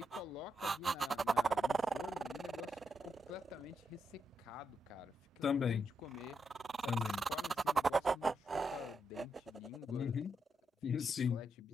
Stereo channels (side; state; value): both; normal; correlation 0.82